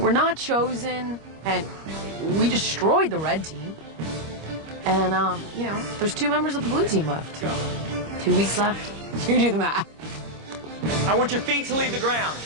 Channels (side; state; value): left; late; 25 ms